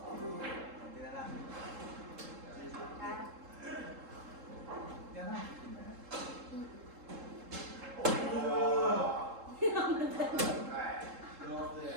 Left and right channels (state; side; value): late; left; 3.7 ms